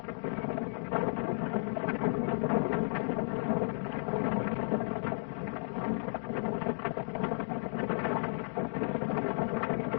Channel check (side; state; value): right; silent; digital silence